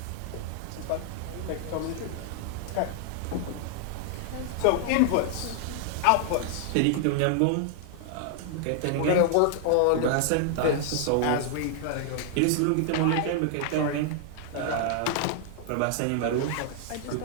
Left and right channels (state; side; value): different; both; correlation 0.00